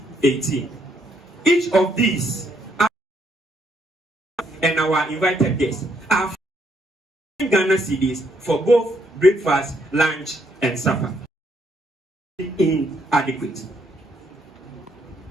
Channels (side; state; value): both; normal; correlation 0.72